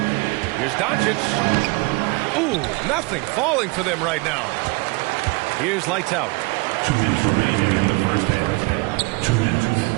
Here's Doncic. Ooh, nothing falling for them right now. Here's lights out. 2 minutes remaining in the first half. 2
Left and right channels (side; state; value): left; quieter; 27.1 dB